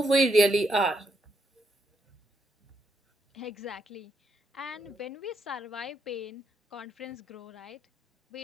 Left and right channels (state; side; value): normal; both; correlation 0.78